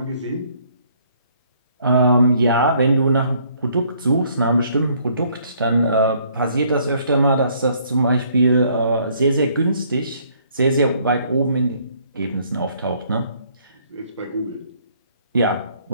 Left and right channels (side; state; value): both; inverted; correlation -0.64